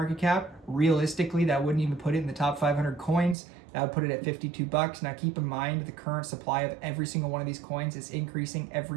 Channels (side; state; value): left; drops out; at 3.4 s